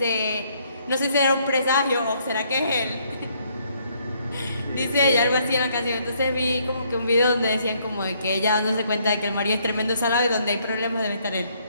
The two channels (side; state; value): both; inverted; correlation -0.68